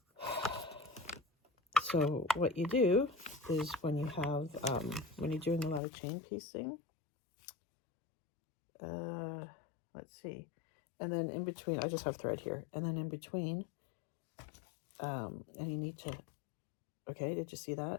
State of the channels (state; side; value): drops out; right; at 5.8 s